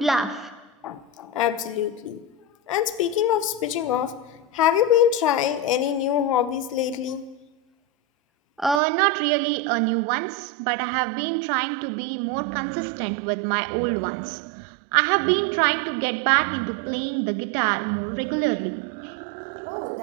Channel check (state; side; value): drops out; left; at 8.8 s